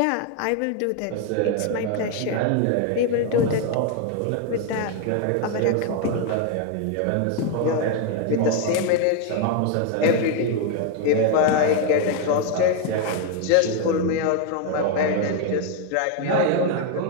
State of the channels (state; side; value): different; both; correlation 0.01